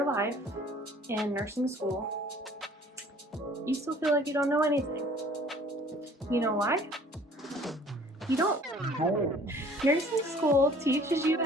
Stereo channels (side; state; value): both; normal; correlation 0.53